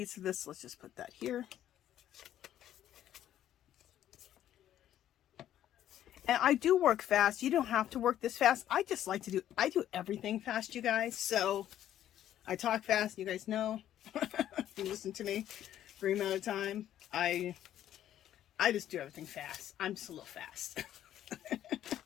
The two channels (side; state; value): right; quieter; 11.6 dB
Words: of this. Let's just put that here. And I do work fast. You don't have to work this fast. I just like to I do everything fast, you guys. So I talk fast. You guys know. If you listen to me for a amount of time, I just do everything fast. I'm just a little fast.